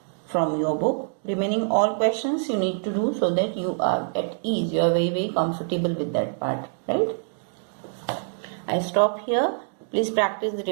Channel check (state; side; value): silent; left; digital silence